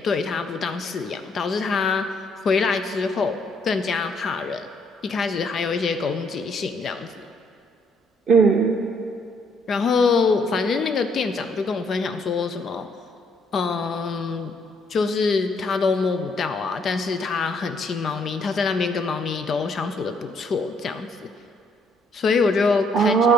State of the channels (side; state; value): both; normal; correlation 0.68